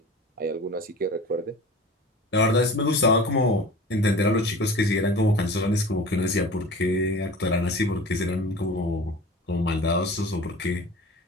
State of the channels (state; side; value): normal; both; correlation 0.38